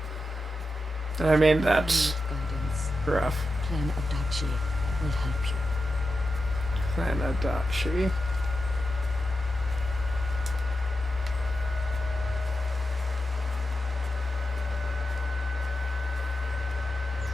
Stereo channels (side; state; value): both; normal; correlation 0.90